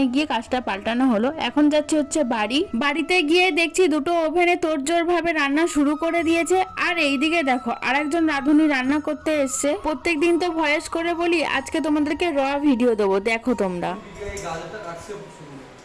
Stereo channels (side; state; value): both; identical; correlation 1.00